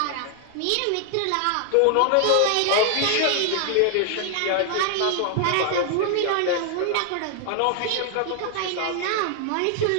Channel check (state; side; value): different; both; correlation 0.00